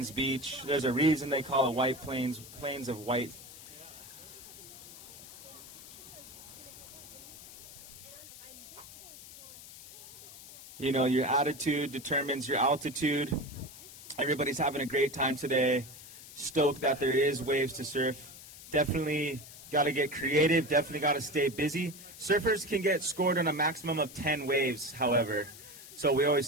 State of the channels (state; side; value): noise; left; hiss, 16 dB below the sound